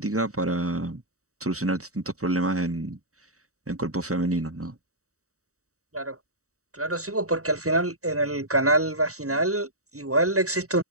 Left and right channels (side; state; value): left; late; 0.65 ms